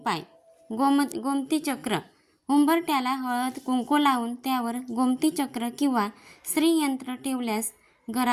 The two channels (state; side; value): identical; both; correlation 1.00